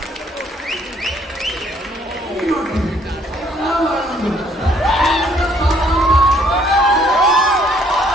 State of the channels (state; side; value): normal; both; correlation 0.64